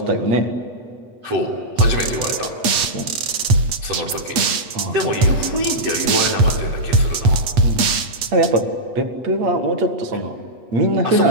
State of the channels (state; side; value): late; left; 8.5 ms